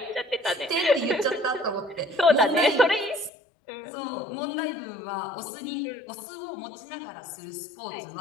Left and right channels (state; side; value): drops out; right; at 3.3 s